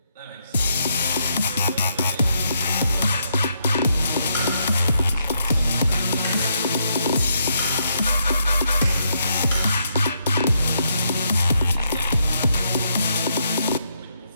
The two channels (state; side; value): inverted; both; correlation -0.77